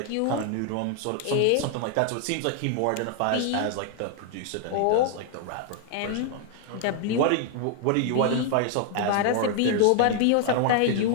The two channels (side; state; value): both; different; correlation 0.00